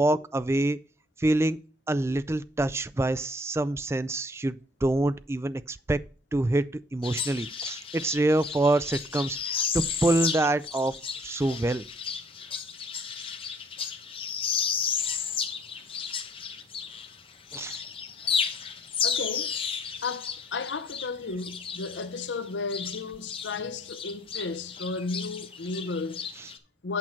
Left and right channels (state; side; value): normal; both; correlation 0.60